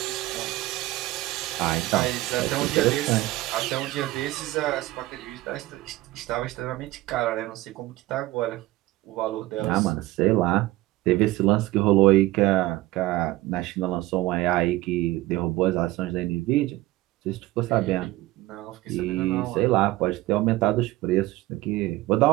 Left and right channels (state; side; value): quieter; left; 18.0 dB